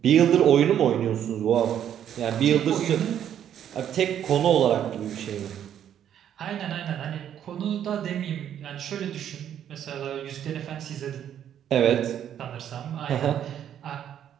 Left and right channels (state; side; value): quieter; left; 9.9 dB